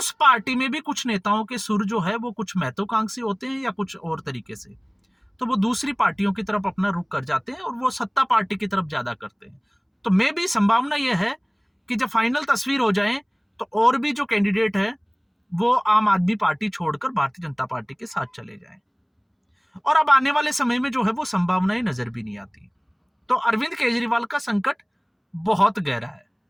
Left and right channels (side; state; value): both; identical; correlation 1.00